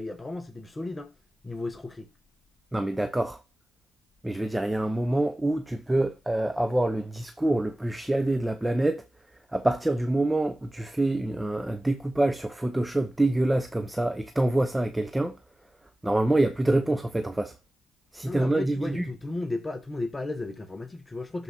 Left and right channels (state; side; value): normal; both; correlation 0.97